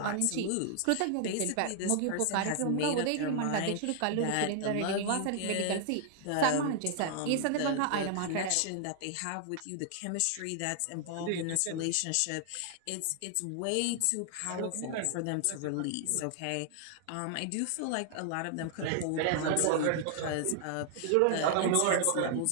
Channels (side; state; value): both; different; correlation 0.00